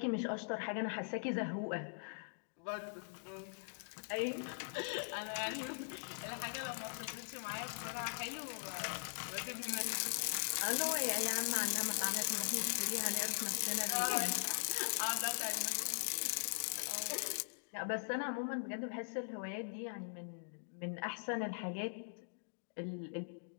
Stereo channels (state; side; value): silent; right; digital silence